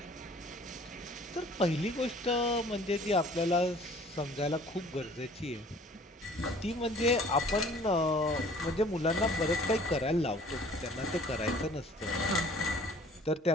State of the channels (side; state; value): both; normal; correlation 0.52